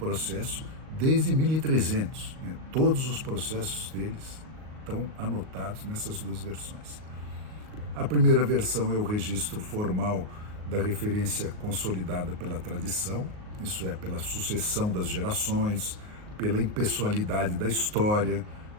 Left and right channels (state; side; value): late; left; 38 ms